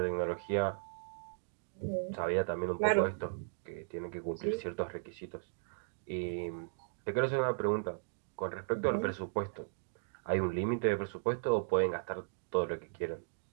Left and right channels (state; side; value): silent; left; digital silence